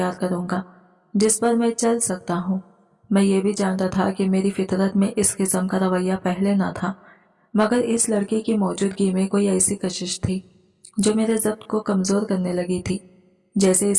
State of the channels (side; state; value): both; identical; correlation 1.00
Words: करूंगा जिस पर मैं चल सकता हूँ। मैं ये भी जानता था कि मेरी फितरत में इस किस्म का रवैया पहले ना था, मगर इस लड़की की मौजूदगी में कोई ऐसी कशिश थी जो मेरे ज़ब्त को कमज़ोर करने लगी थी, जैसे